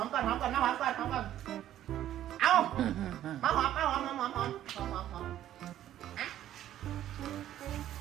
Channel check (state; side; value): quieter; left; 12.1 dB